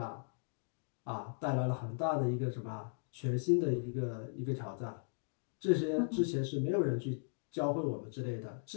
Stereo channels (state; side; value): silent; right; digital silence